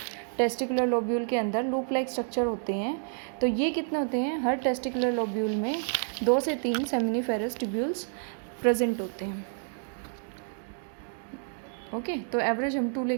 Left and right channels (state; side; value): silent; left; 56 dB below the other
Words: टेस्टिकुलर लोब्यूल के अंदर लूप लाइक स्ट्रक्चर होते हैं, तो ये कितने होते हैं, हर टेस्टिकुलर लोब्यूल में 2 से 3 सेमिनिफेरस ट्यूब्यूल्स प्रेजेंट होते हैं। ओके, तो एवरेज हम 2